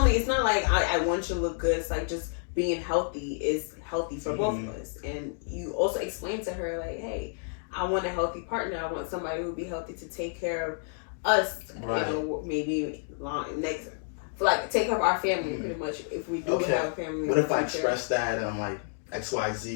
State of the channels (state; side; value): silent; right; digital silence